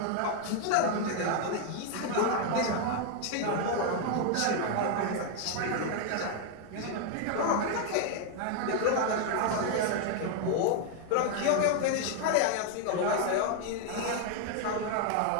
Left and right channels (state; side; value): different; both; correlation 0.00